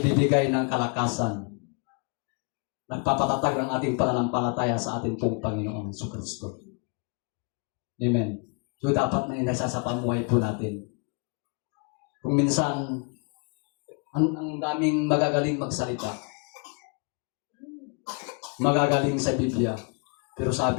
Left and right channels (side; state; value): right; quieter; 36.9 dB